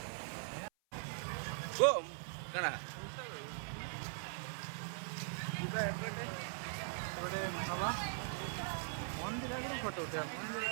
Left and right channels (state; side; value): silent; left; 50 dB below the other